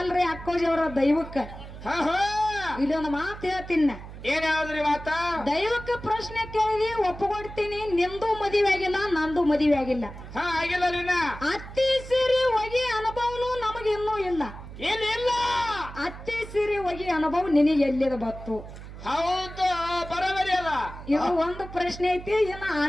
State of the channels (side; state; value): right; noise; hum, 13 dB below the sound